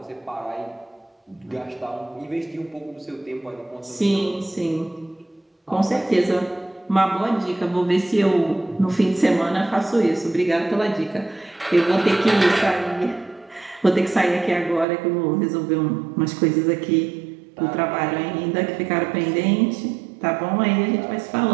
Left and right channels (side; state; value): left; drops out; at 14.9 s